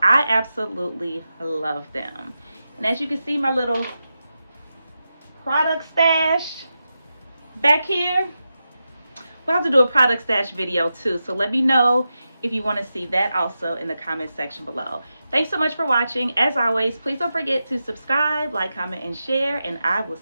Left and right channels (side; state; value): both; inverted; correlation -0.90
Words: I absolutely love them. And as you can see, my little product stash back here. We'll have to do a product stash video too, so let me know if you want to see that also in the comment section below. Thanks so much for watching. As always, please don't forget to subscribe, like, comment, and share, and I will